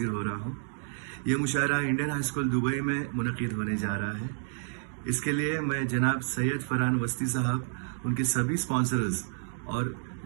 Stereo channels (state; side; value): silent; left; digital silence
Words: हो रहा हूं। ये मुशायरा इंडियन हाई स्कूल दुबई में मुनक़िद होने जा रहा है। इसके लिए मैं जनाब सैयद फरहान वस्ती साहब, उनके सभी स्पॉन्सर्स और